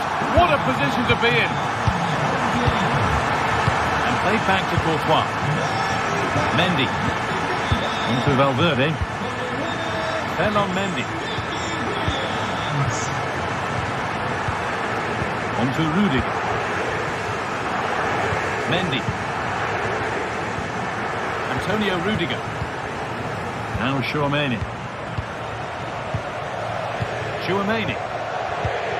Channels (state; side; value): identical; both; correlation 1.00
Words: What a position to be in. And played back to Courtois. Mendy. Into Valverde. Then on Mendy. Onto Rudiger. Mendy. Antonio Rudiger. Now Chouameni. Chouameni.